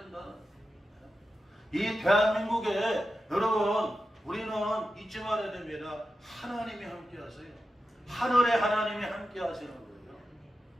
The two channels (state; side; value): normal; both; correlation 0.91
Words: 이 대한민국에 여러분 우리는 잊지 말아야 됩니다. 하나님이 함께 하세요. 하늘의 하나님이 함께 하시는 거예요.